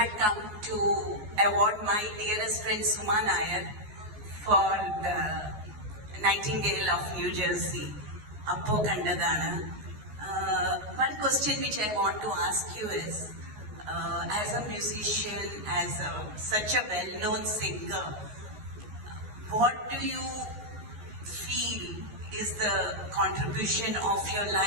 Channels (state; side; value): late; left; 14 ms